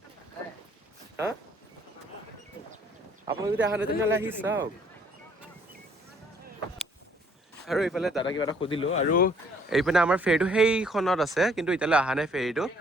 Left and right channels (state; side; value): normal; both; correlation 0.62